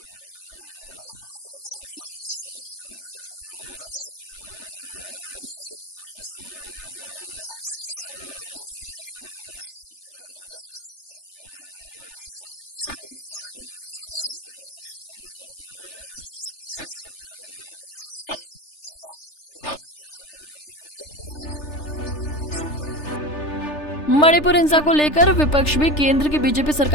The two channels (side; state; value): right; late; 3.3 ms